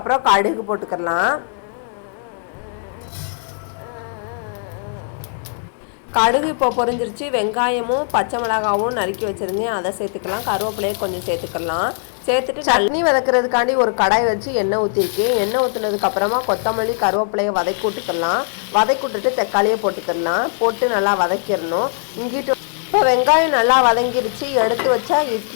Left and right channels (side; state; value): right; silent; digital silence